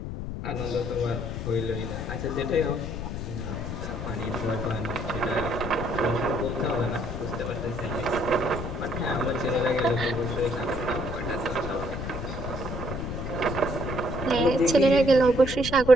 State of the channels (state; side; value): noise; left; rumble, 6 dB below the sound